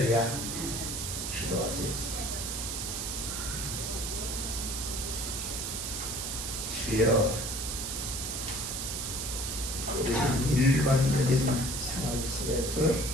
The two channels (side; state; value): right; noise; hiss, 3 dB below the sound